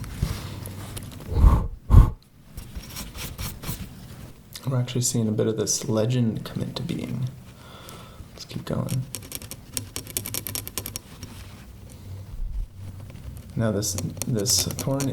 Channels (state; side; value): identical; both; correlation 1.00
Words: We're actually seeing a bit of this legend come into being. Let's keep going. Now this thorn